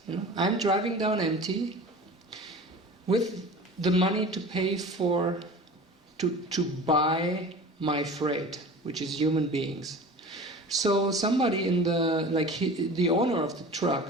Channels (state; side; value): normal; both; correlation 0.38